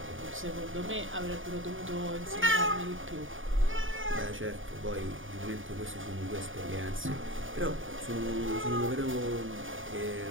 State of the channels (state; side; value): late; left; 0.58 ms